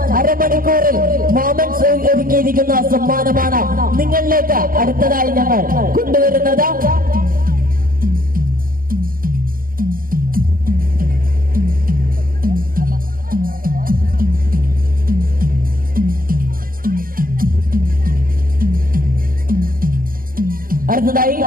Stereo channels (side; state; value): left; late; 0.41 ms